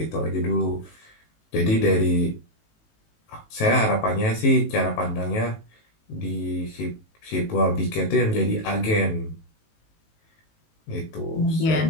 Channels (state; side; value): late; right; 18 ms